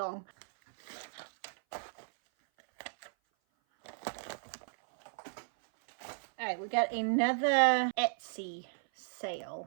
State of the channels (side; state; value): left; silent; 55 dB below the other